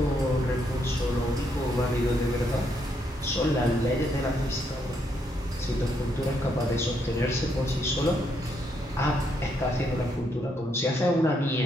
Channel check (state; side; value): normal; both; correlation 0.75